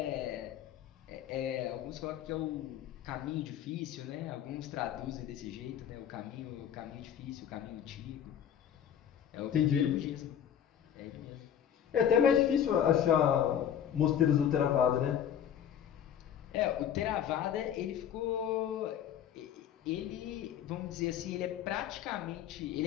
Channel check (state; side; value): quieter; right; 9.4 dB